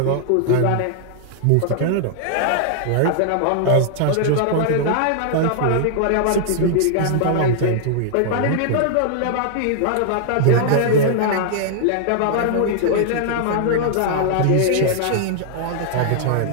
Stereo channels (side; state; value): both; different; correlation -0.01